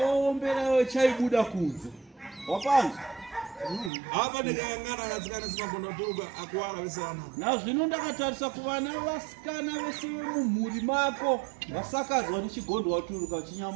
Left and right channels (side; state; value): left; drops out; at 3.9 s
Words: iwe chaibuda kunze wapanza apa ndikayangana anasikana simagonda turuka akuwara vesana nazvino ndakatarisa kuvana vasikana vese vemumhuri mako vasakadzwa nechigondwa turuka